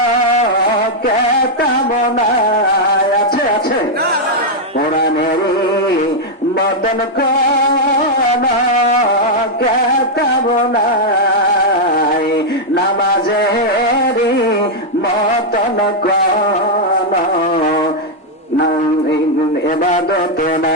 কেতাব নাই, আছে আছে? কোরআনেরই মতন কোন কেতাব নাই, নামাজেরই মতন কোন ইবাদত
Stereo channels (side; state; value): both; normal; correlation -0.03